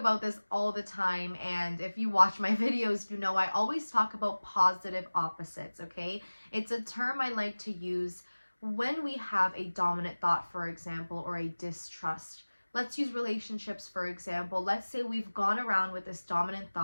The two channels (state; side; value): inverted; both; correlation -1.00